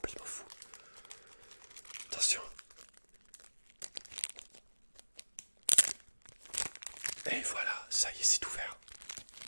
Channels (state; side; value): inverted; both; correlation -1.00